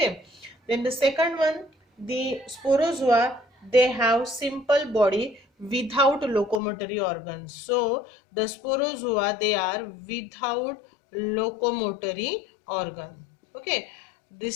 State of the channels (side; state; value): right; drops out; at 6.6 s